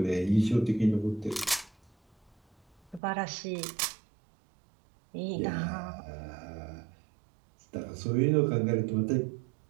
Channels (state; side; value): drops out; left; at 3.0 s